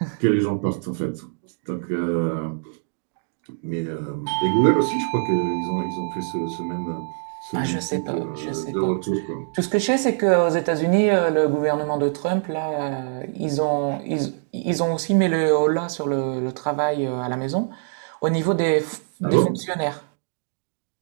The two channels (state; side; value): silent; left; digital silence